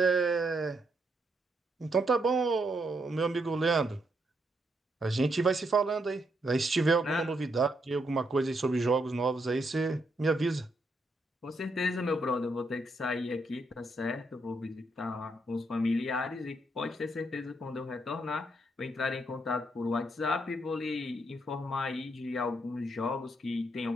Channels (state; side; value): normal; both; correlation 0.77